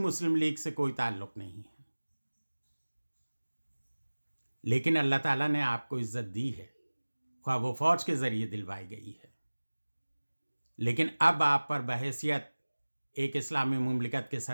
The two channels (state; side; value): inverted; both; correlation -1.00